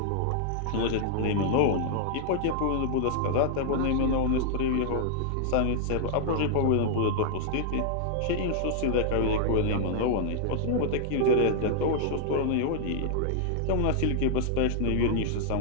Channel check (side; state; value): both; different; correlation -0.01